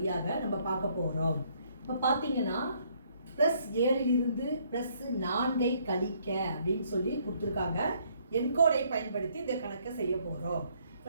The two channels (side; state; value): both; inverted; correlation -0.67